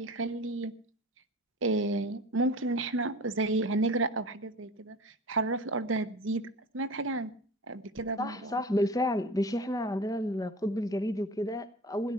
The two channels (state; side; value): normal; both; correlation 0.36